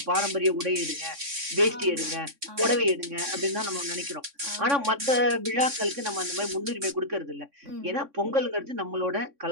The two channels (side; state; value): left; late; 3.6 ms